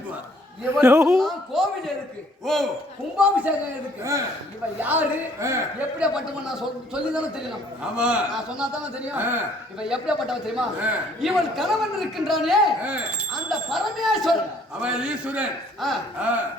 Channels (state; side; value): normal; both; correlation 0.60